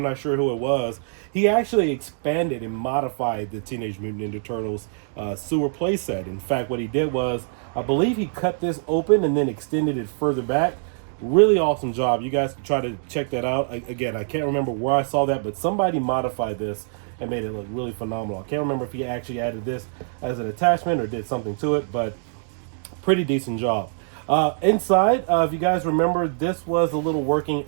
not sure who it was, he actually expanded and modified the Teenage Mutant Ninja Turtles sewer playset. In fact, what he did was, I believe he cut this open and then extended it further back. Really awesome job. You guys can try to check that out. Again, I can't remember where I saw that, but somebody modified this and made it look really phenomenal. I can't remember if he actually added this as an attachment or did something to it, but pretty decent job. Inside, if you guys remember, this was a little working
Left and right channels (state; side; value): silent; left; digital silence